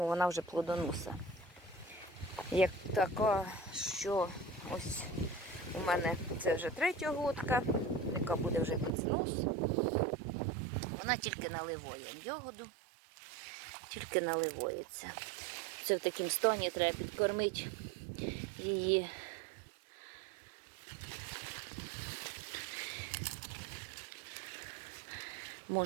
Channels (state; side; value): drops out; left; at 8.9 s